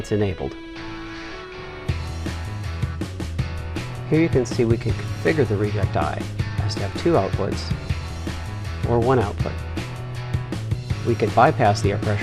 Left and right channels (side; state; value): both; identical; correlation 1.00